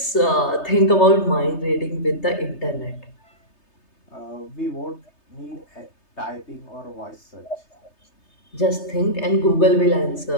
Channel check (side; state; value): right; late; 3.3 ms